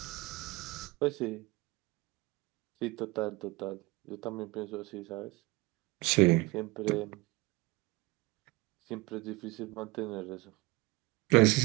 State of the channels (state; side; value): quieter; left; 23.4 dB